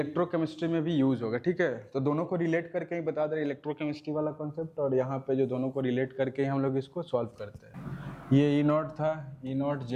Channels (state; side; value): identical; both; correlation 1.00